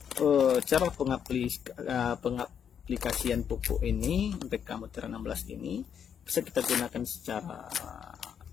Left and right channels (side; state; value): right; quieter; 8.0 dB